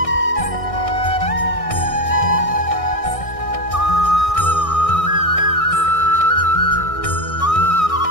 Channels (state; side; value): late; right; 1.6 ms